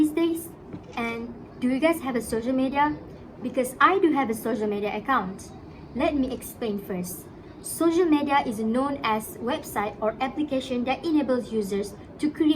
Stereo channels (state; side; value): identical; both; correlation 1.00